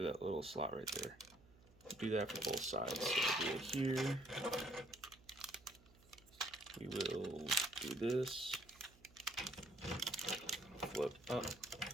that little slot right there. Do that for both sides. So we'll do it here. We will do this, flip up.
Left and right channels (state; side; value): noise; right; hum, 26 dB below the sound